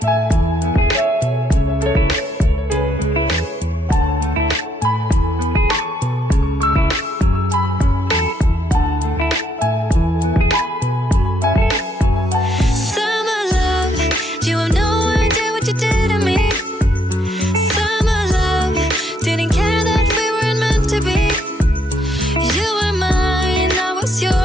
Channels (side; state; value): both; normal; correlation 0.72